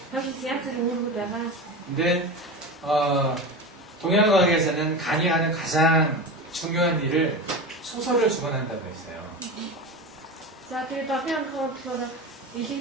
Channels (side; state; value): both; normal; correlation 0.26